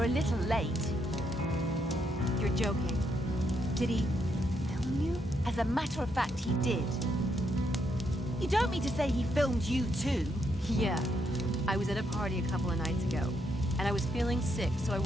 a little late. You're joking. Did he film you? As a matter of fact, he did. You don't mean to say he filmed you too? Yeah. I was at a party a couple of nights ago, and I was feeling sick, so I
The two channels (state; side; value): normal; both; correlation 0.77